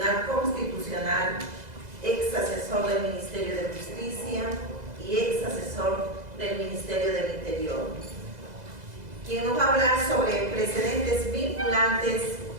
Constitucional, ex asesor del Ministerio de Justicia y ex asesor del Ministerio del Interior, quien nos va a hablar sobre precedentes vinculantes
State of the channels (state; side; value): late; left; 2.0 ms